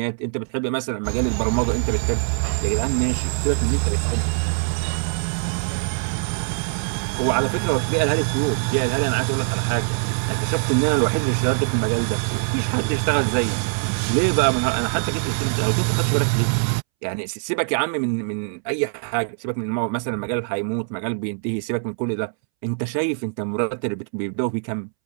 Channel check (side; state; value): left; silent; 64 dB below the other